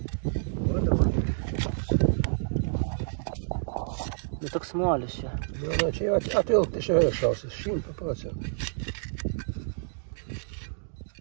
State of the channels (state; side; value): silent; left; digital silence